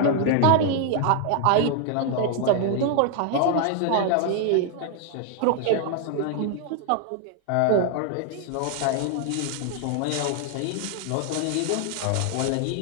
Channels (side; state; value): both; different; correlation 0.00